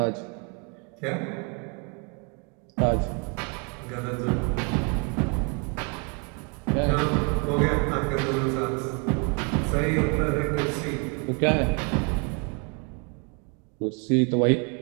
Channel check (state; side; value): quieter; left; 33.0 dB